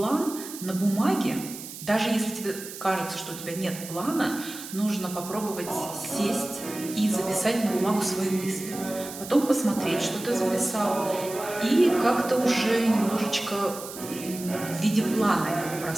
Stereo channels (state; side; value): noise; right; hiss, 12 dB below the sound